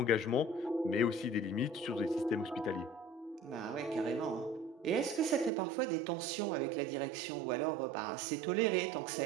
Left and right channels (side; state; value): left; drops out; at 5.5 s